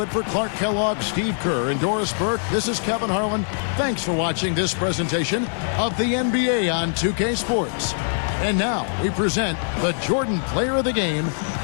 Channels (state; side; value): silent; right; 59 dB below the other